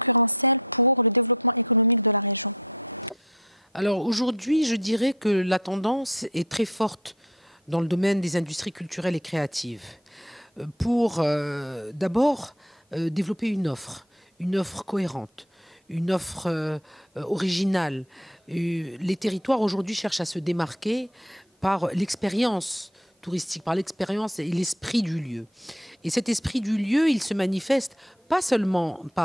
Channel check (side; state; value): both; normal; correlation 0.50